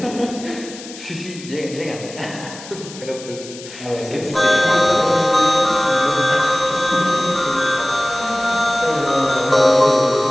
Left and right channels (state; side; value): noise; left; hiss, 15 dB below the sound